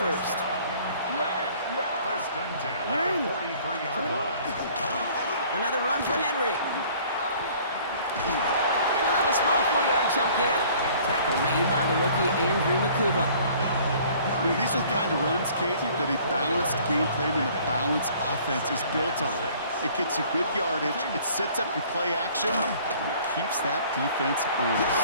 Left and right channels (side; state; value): both; inverted; correlation -0.54